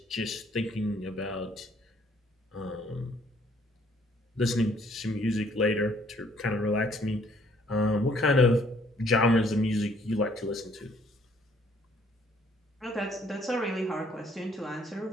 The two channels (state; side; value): normal; both; correlation 0.63